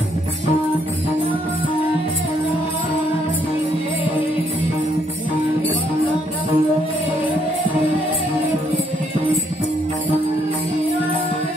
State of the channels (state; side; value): normal; both; correlation 0.71